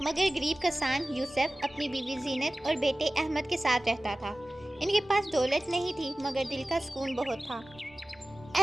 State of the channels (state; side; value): normal; both; correlation 0.97